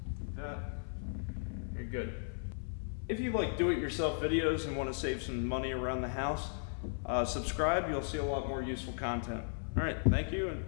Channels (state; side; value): silent; right; 54 dB below the other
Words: That. You're good. If you like do-it-yourself videos and want to save some money around the house, subscribe. You'll see a lot more useful content. All right, thank you and